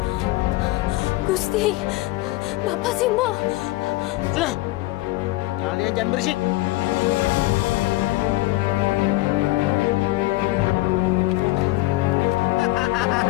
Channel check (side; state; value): right; quieter; 19.4 dB